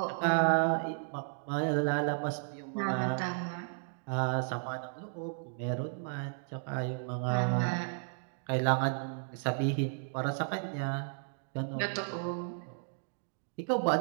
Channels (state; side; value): silent; left; digital silence